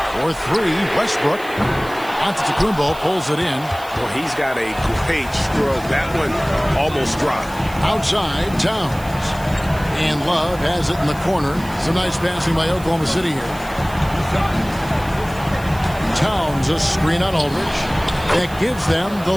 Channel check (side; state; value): right; noise; hiss, 19 dB below the sound